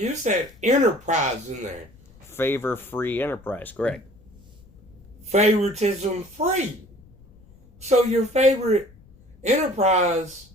said enterprise in there. Favor free enterprise, correct. Favoritism free. So your favorite enterprise,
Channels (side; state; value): left; noise; rumble, 25 dB below the sound